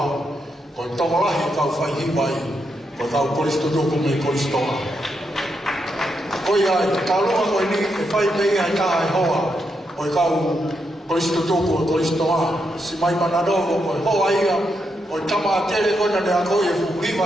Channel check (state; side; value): normal; both; correlation 0.82